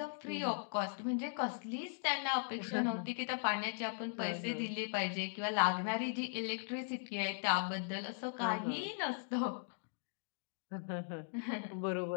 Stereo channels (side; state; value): right; silent; digital silence